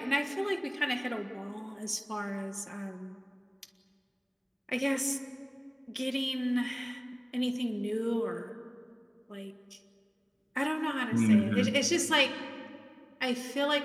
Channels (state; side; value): identical; both; correlation 1.00